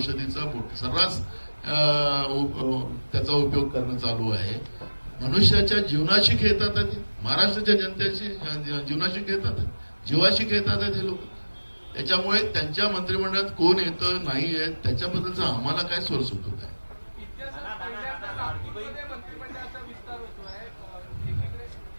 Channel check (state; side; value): inverted; both; correlation -1.00